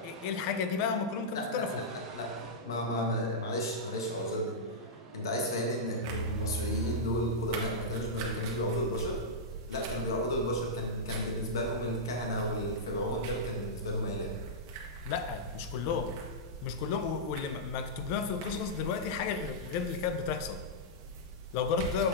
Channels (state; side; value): normal; both; correlation -0.11